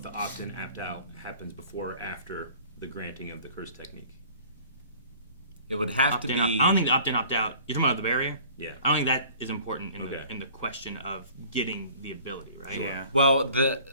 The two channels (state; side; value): inverted; both; correlation -0.49